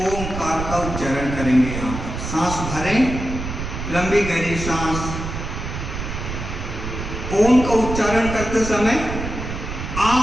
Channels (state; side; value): noise; right; rumble, 6 dB below the sound